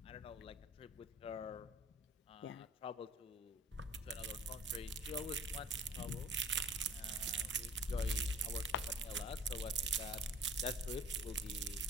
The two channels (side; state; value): both; normal; correlation 0.46